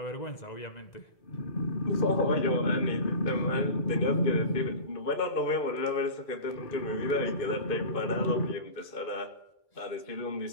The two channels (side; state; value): right; late; 2.4 ms